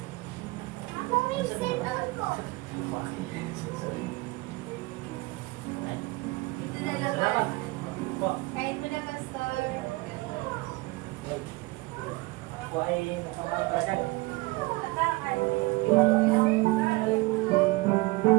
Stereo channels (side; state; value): left; quieter; 23.1 dB